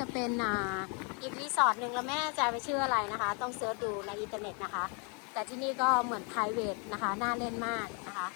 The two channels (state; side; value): quieter; right; 35.9 dB